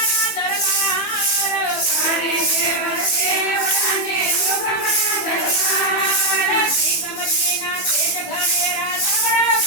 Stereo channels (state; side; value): late; right; 15 ms